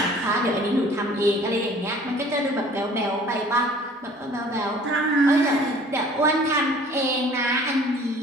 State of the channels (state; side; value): normal; both; correlation 0.51